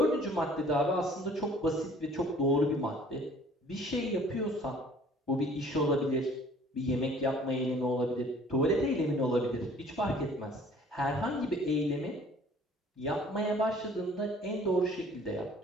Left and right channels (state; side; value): normal; both; correlation 0.53